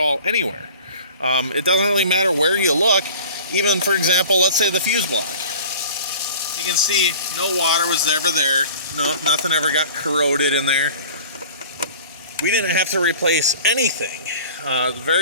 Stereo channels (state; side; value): inverted; both; correlation -0.43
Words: anywhere. It doesn't really matter where you look. Even, for example, let's say the fuse block. You can see no water was ever there. No, nothing ever got corroded in there. We didn't have to replace anything.